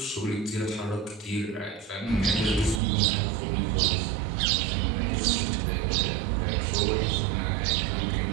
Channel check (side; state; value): left; drops out; at 2.8 s